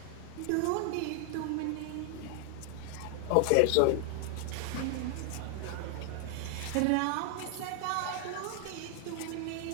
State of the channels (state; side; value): different; both; correlation 0.00